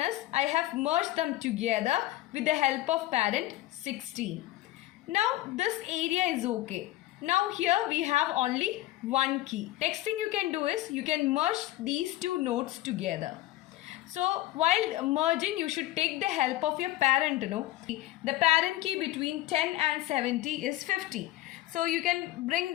is, I have merged them together with the help of parent 16. Now this area is okay. Now here we have only one key. Next thing you can do is, you can merge these two nodes together. So while merging, you should take the help of your parent, The parent key between 10 and 70 is 50. So you can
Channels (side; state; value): right; quieter; 15.8 dB